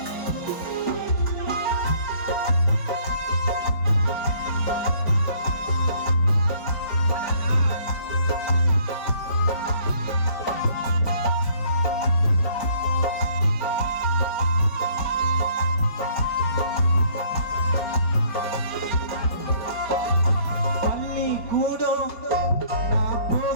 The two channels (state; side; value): late; right; 4.7 ms